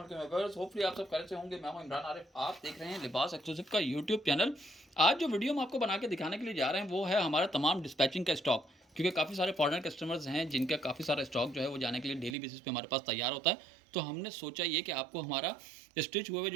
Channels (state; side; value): drops out; left; at 12.4 s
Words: वालेकुम viewers, hopefully आप सब खैरियत से होंगे। मैं हूं इमरान आरिफ, आप देख रहे हैं लिबास एक्सक्लूसिव का यूट्यूब चैनल। आज जो वीडियो हम आपको बना के दिखाने के लिए जा रहे हैं वो है हमारा तमाम डिस्पैचिंग का स्टॉक, क्योंकि काफ़ी सारे फॉरेनर कस्टमर्स हैं जिनका काफ़ी सारा स्टॉक जो है वो जाने के लिए डेली बेसिस पे हमारे पास तैयार होता है। तो हमने सोचा ये कि आपको हमारा स्टिच हुए हुए